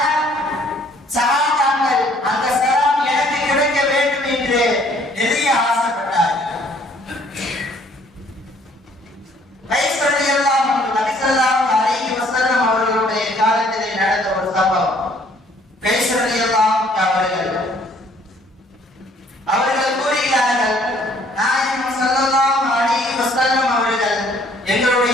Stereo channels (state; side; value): normal; both; correlation 0.60